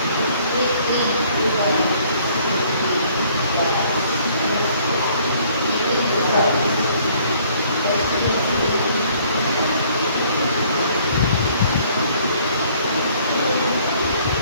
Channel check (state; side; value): inverted; both; correlation -0.60